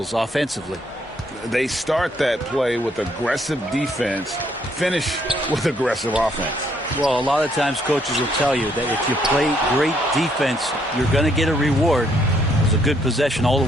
offensively. They start that play with aggressive defense, finish with aggressive offense. Well, a lot of times coaches will tell you that if you play great defense, you're going to get a reward. It was a good possession all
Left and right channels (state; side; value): normal; both; correlation 0.70